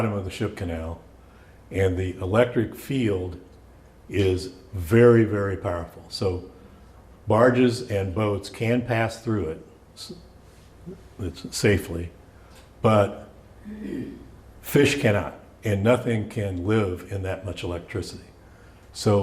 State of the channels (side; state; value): both; identical; correlation 1.00